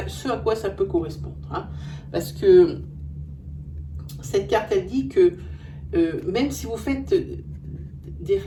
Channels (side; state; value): both; identical; correlation 1.00